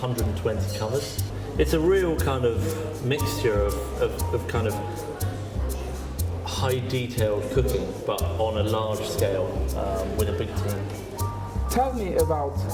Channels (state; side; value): identical; both; correlation 1.00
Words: covers. It's a real kind of mixture of kind of high detailed cooking, but on a large scale with a big team. Tell me about